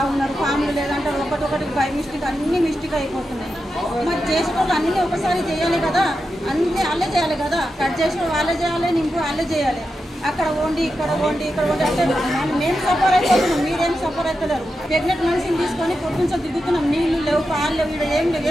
ఉన్నారు, ఫామ్లు లేదంటే ఒకటి బై మిస్టేక్ అన్ని మిస్టేక్ అయిపోతున్నాయి. మరి చేసేటప్పుడు అన్నీ ఒకసారి చేయాలి కదా, అన్నీ వాళ్ళే చేయాలి కదా, కట్ చేసి వాళ్ళే చేయాలి, నింపు వాళ్ళే చేయాలి. అక్కడ వండి ఇక్కడ వండి అంటే మేము సఫర్ అయిపోతున్నాం, మీరేం సఫర్ అవుతలేరు. ప్రెగ్నెంట్ మనిషిని తీసుకొని పొద్దుంచో దిగుతున్నాం, నీళ్ళు లేవు, పాలు లేవు, ఇక్కడ ఏం లేవు,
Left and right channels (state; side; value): normal; both; correlation 0.89